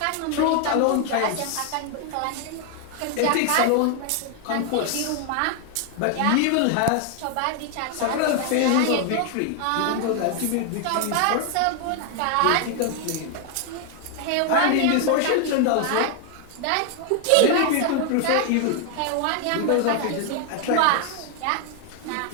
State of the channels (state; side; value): different; both; correlation 0.00